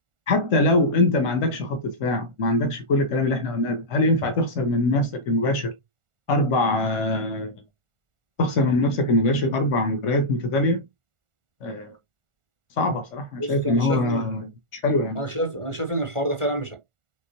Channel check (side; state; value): left; late; 1.4 ms